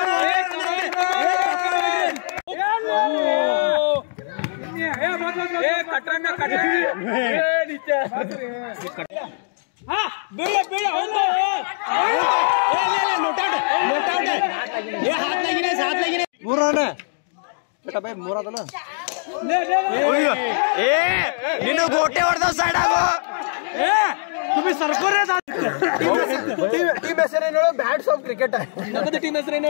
ನೀನು ಗೋಟೆ ಹೊಡೆದ ಸೈಡ್ ಆಗೋ. ಟೀಮ್ ಹೆಸರೇನು? Bats of cricket. ನಮ್ಮದು ಟೀಮ್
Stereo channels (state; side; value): silent; right; digital silence